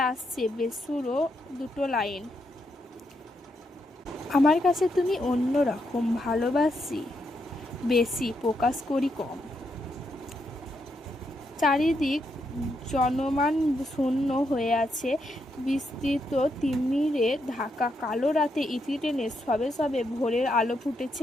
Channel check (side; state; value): both; normal; correlation 0.80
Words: আসছে বেসুরো দুটো লাইন, আমার কাছে তুমি অন্য রকম, ভালোবাসি বেশি, প্রকাশ করি কম। চারিদিক জনমান শূন্য হয়ে আছে। বিস্তৃত তিমিরে ঢাকা কালো রাতে ইতি টেনে সবে সবে ভোরের আলো